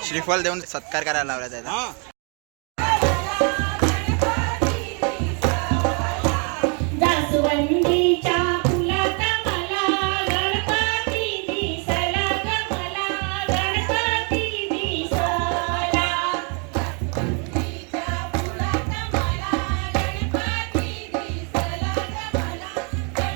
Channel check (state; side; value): quieter; left; 36.4 dB